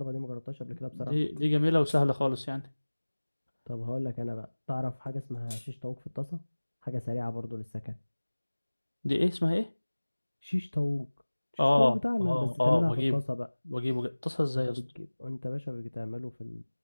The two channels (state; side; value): inverted; both; correlation -1.00